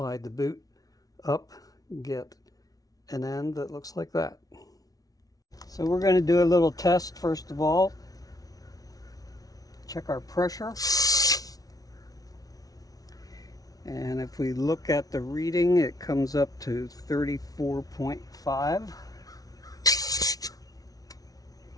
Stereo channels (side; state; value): right; late; 0.18 ms